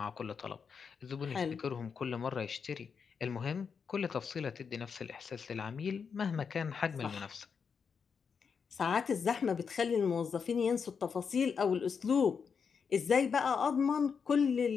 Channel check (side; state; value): right; quieter; 6.1 dB